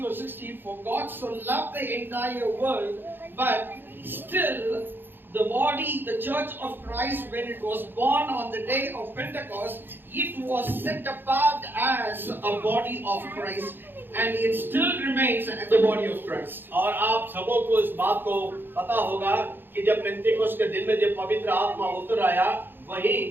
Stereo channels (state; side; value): late; left; 0.098 ms